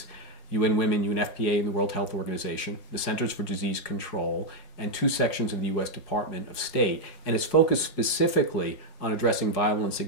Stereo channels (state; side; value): late; right; 5.5 ms